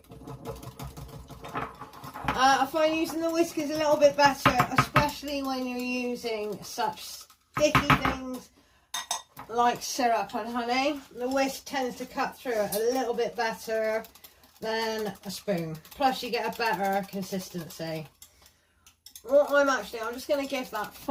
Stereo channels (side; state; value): both; identical; correlation 1.00